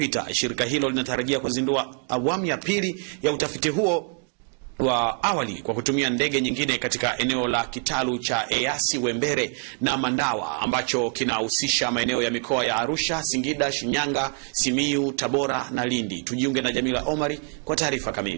shirika hilo linatarajia kuzindua awamu ya pili ya utafiti huo wa awali kwa kutumia ndege nyingine katika eneo la kitalu cha Eyasi Wembere na Mandawa ambacho kinahusisha maeneo ya mikoa ya Arusha, Singida, Shinyanga, Simiyu, Tabora na Lindi. Tujiunge na Jamila Omari kwa taarifa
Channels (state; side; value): quieter; left; 37.7 dB